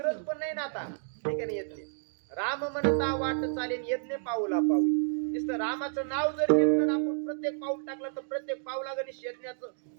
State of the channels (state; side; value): silent; left; digital silence